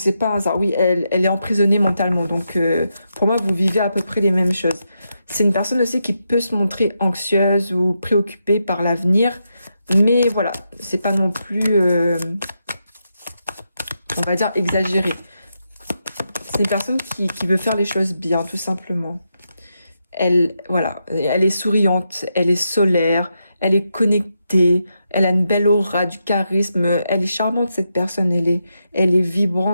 pas un hasard. Oui, elle est emprisonnée mentalement. Donc, pour moi, vous vivez à peu près les mêmes choses. C'est une personne aussi qui peut se montrer anxieuse ou préoccupée par l'avenir. Mais voilà, c'est pas non plus, on va dire, exagéré. C'est une personne qui veut faire les choses bien, tout simplement. Voilà, elle est souriante, elle est solaire, elle est connectée, elle a une belle aura, du charisme, elle est charmante cette personne, elle est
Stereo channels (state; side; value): inverted; both; correlation -0.84